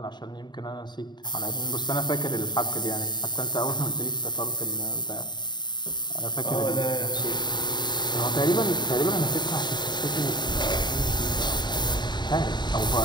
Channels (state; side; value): late; right; 0.21 ms